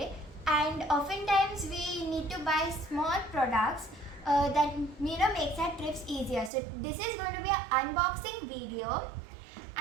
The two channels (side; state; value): left; drops out; at 6.5 s